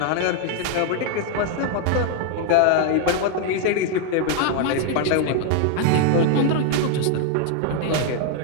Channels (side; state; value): both; different; correlation 0.00